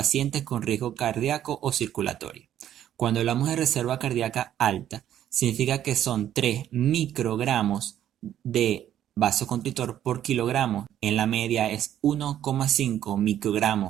con riesgo cardíaco o circulatorio. Cuando hablamos de reserva cardíaca alta, significa que son 3 microgramos de vasoconstrictor por kilogramo. En la media es 1,5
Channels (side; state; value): left; quieter; 11.1 dB